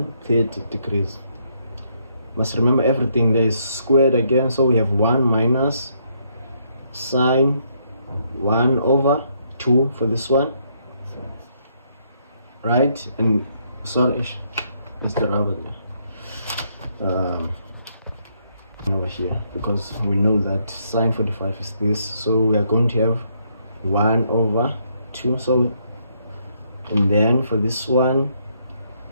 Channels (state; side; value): inverted; both; correlation -0.73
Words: 30 degrees. Must remember everything there is squared again. So we have 1 minus sine 1 over 2 for this one, right? And sorry, that's the rubber there. Over here, because we know that sine 45 is this, so we are going to have 1 over 2. So, and then for this one,